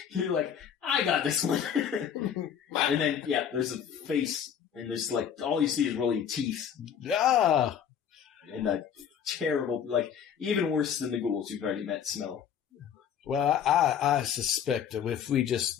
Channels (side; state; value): right; quieter; 8.4 dB